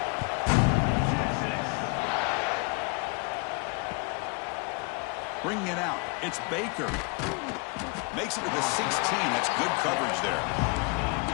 Bringing it out, it's Baker. Makes it to the 16. That's good coverage there.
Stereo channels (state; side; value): quieter; right; 31.5 dB